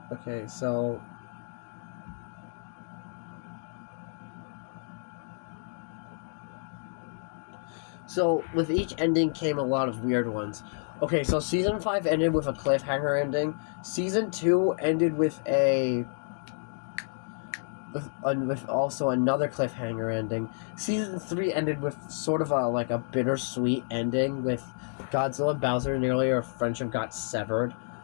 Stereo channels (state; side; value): silent; right; digital silence